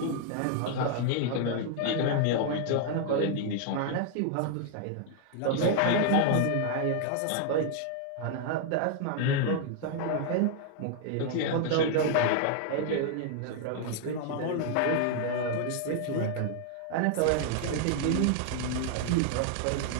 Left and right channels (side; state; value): both; different; correlation 0.00